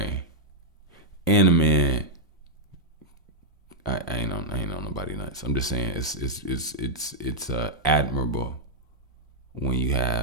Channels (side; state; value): both; normal; correlation -0.04